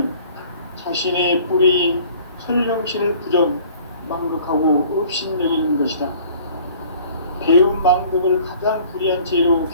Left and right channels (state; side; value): inverted; both; correlation -0.52